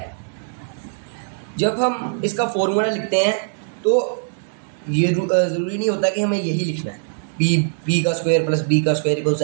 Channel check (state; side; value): silent; left; digital silence